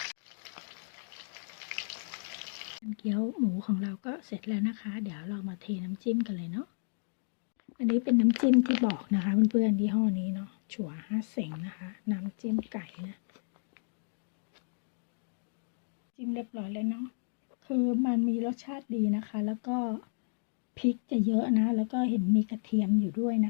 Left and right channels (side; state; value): right; silent; digital silence